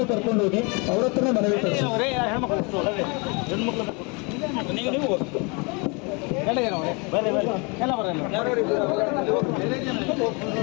ಕರ್ಕೊಂಡು ಹೋಗಿ ಅವ್ರ ಹತ್ರನೇ ಮನವಿ ಕೊಡಿಸಿ.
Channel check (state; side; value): quieter; right; 31.0 dB